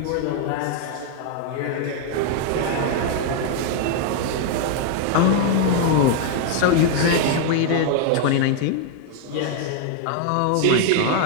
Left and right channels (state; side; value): different; both; correlation 0.00